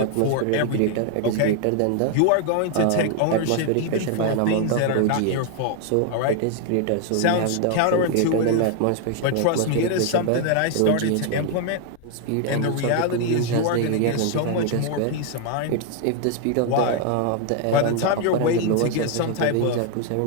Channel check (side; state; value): both; different; correlation 0.00